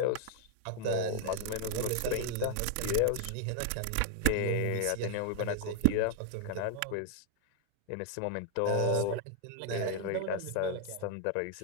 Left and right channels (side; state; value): both; different; correlation 0.00